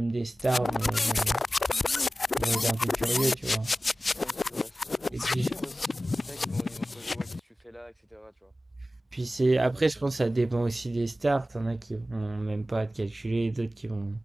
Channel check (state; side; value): normal; both; correlation 0.96